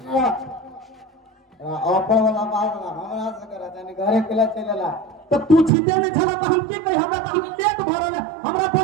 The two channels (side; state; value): left; drops out; at 5.7 s